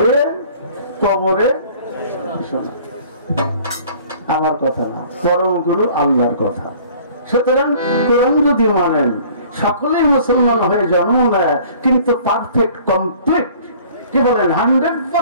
কবরে। আমার কথা না, পরম গুরু আল্লাহর কথা। সুতরাং কোরআন যদি মানেন, সকলেই মুসলমান হয়ে জন্ম নেয়, কিন্তু পারফেক্ট কমপ্লিট, কি বলেন,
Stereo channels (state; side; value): inverted; both; correlation -0.52